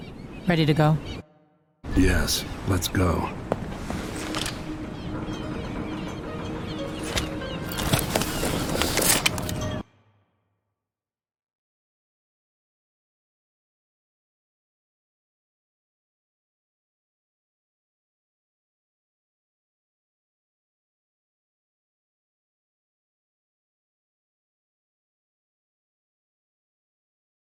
Ready to go? Yes, let's go.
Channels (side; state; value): both; identical; correlation 1.00